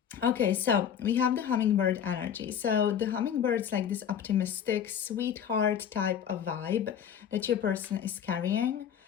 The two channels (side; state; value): right; quieter; 8.6 dB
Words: Okay, so we have the Hummingbird energy. So the Hummingbird's like this optimistic, sweetheart type of vibe that your person is carrying.